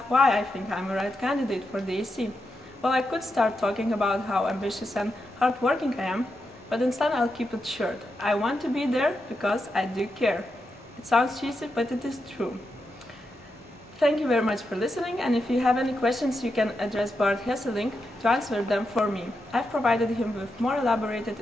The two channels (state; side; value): normal; both; correlation 0.86